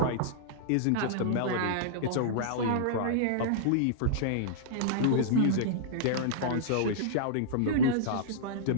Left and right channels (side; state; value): both; different; correlation -0.02